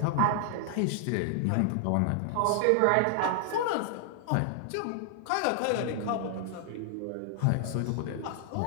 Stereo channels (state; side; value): different; both; correlation 0.00